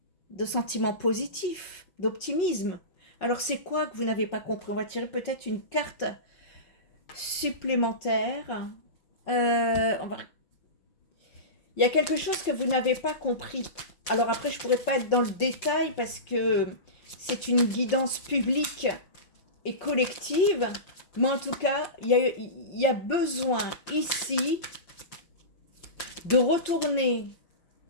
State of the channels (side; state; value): right; late; 5.6 ms